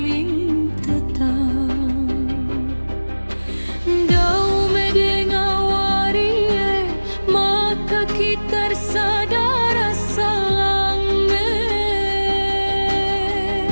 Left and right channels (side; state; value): both; inverted; correlation -1.00